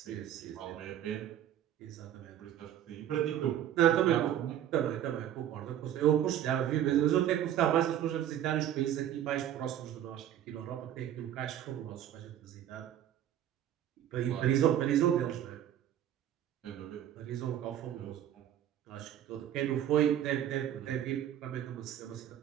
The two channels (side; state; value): left; quieter; 11.0 dB